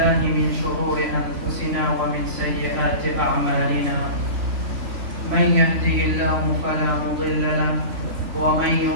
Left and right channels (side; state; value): left; late; 3.5 ms